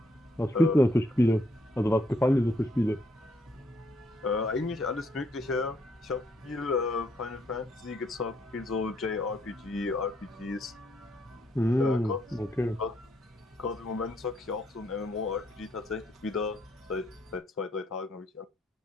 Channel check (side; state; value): both; normal; correlation 0.71